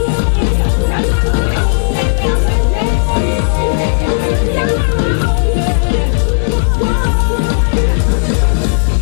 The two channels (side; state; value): right; silent; digital silence